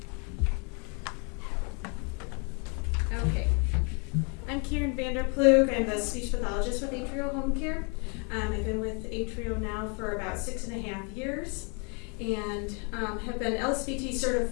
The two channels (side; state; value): right; quieter; 35.8 dB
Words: Okay. I'm Karen Vanderploeg. I'm the speech pathologist with Atrial Home Care. I've been with Atrial now for about 6.5 years and have been LSVT